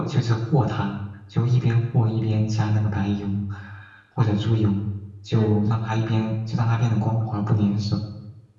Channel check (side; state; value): both; identical; correlation 1.00